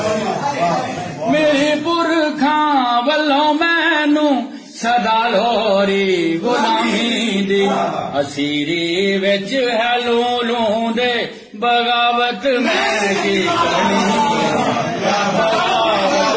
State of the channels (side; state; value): both; identical; correlation 1.00